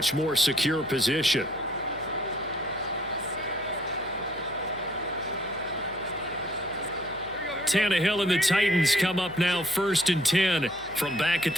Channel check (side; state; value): left; noise; hum, 22 dB below the sound